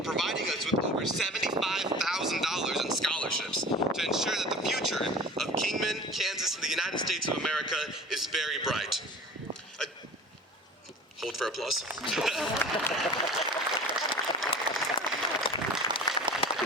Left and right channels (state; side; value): normal; both; correlation 0.40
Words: us with over $75,000 in scholarships to ensure that the future of Kingman, Kansas, and the United States of America is very bright. Hold for applause.